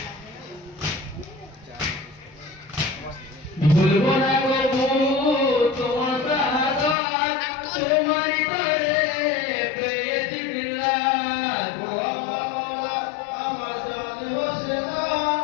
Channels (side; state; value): right; drops out; at 7.0 s